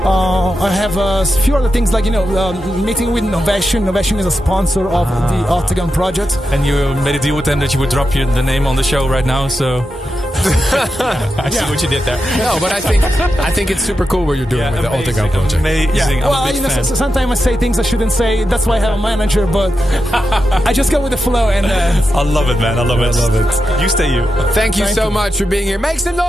I have a few other things like meeting with Novation. Novation is a sponsor of the Octagon project. And you made a deal with them that you would drop the name on the show right now. So I see what you did there. No, but I think it's super cool what you're doing with the Octagon project. Amazing. Yeah. Well, sometimes I say things I shouldn't say. That's why I have a manager, but I just go with the flow. And I love it, man. I love it. You stay you. Thank you so much for being here. Make some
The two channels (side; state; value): both; normal; correlation 0.88